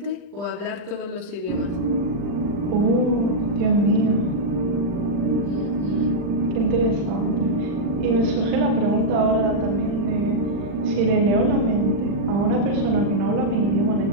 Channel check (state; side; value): late; left; 40 ms